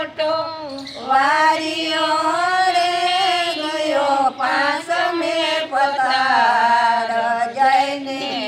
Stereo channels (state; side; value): identical; both; correlation 1.00